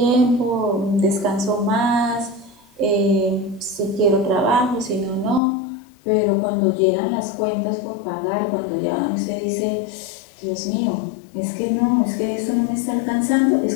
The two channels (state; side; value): drops out; right; at 5.4 s